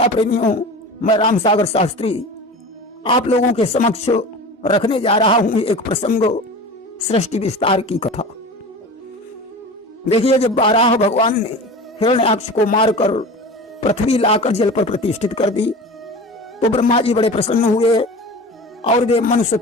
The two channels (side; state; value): both; normal; correlation 0.34